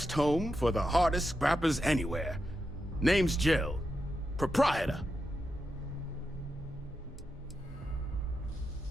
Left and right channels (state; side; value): normal; both; correlation 0.87